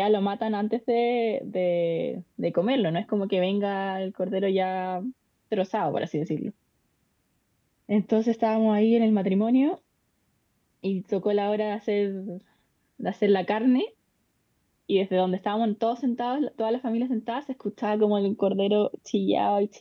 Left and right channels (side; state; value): both; identical; correlation 1.00